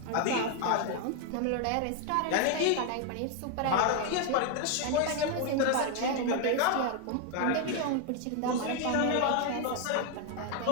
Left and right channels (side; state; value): both; different; correlation 0.01